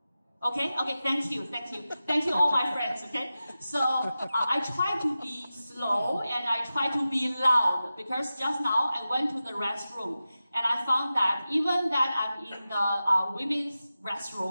Okay, thank you. Thank you all my friends, okay? So I try to be slow and I try to be loud because just now I went to the restroom and I found that even that I'm in the women's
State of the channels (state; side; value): inverted; both; correlation -0.94